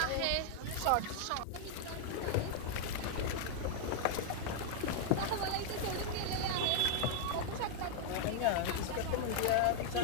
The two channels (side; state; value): both; different; correlation 0.00